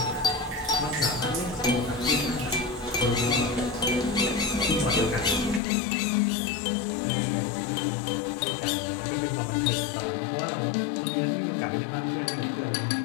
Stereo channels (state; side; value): drops out; right; at 5.6 s